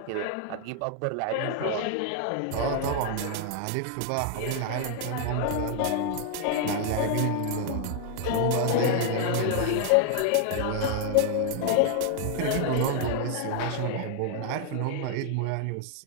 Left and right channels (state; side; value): different; both; correlation 0.00